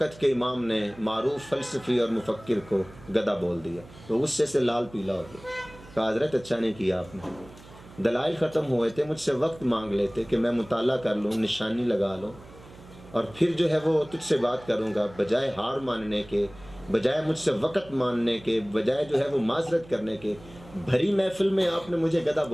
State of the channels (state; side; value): noise; right; hum, 21 dB below the sound